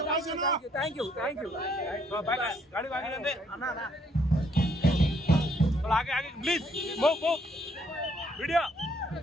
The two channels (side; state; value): both; normal; correlation 0.68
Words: आगे आगे please move move video